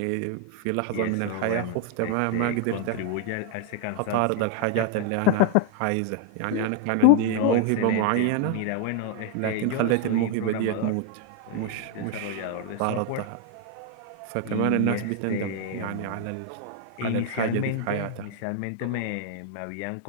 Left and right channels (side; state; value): both; different; correlation 0.00